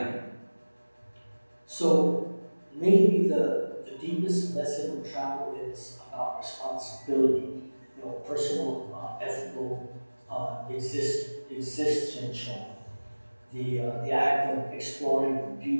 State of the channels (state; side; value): inverted; both; correlation -1.00